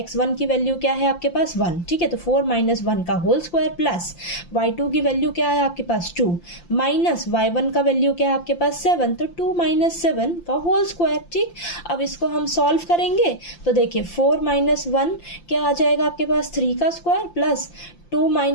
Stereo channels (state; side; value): late; right; 5.8 ms